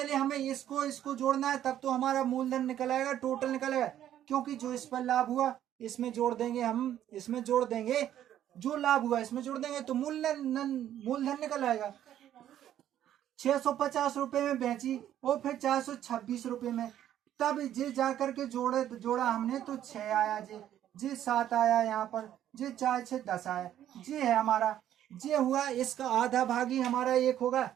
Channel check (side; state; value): left; quieter; 11.3 dB